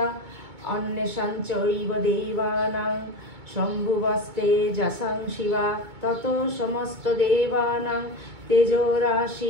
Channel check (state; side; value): late; left; 2.2 ms